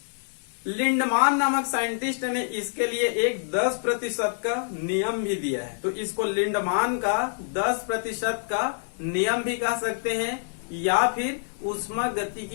लिंडमान नामक साइंटिस्ट ने इसके लिए एक 10% का नियम भी दिया है। तो इसको लिंडमान का 10% का नियम भी कह सकते हैं या फिर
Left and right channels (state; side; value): silent; right; digital silence